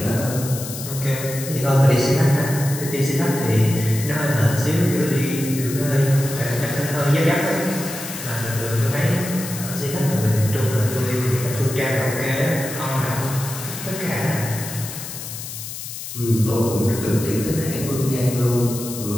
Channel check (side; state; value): left; noise; hiss, 9 dB below the sound